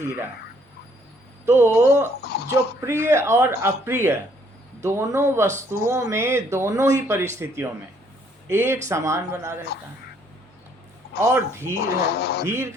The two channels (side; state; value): both; normal; correlation 0.65